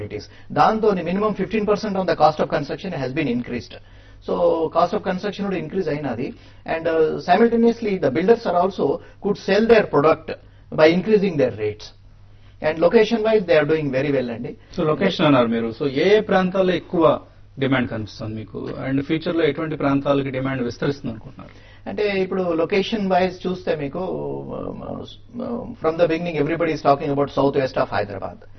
దాంతో minimum 15% on the cost of construction has been increased. So cost of construction కూడా ఇంక్రీజ్ అయినది. And simultaneously the builders are also could sell their product by increasing their rates. And location wise they are doing very well అండి. సో లొకేషన్ అన్నారు మీరు, సో ఏ ప్రాంతాల్లో ఎక్కువ డిమాండ్ కనిపిస్తుంది మీకు, అండ్ ఫ్యూచర్ లో ఎటువంటి ప్రాంతాలకి డిమాండ్ విస్తరిస్తుంది అనుకుంటున్నారు? అంటే ఇప్పుడు లొకేషన్ వైజ్ చూస్తే మీకు from the beginning everybody is talking about south west of Hyderabad.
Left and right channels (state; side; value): identical; both; correlation 1.00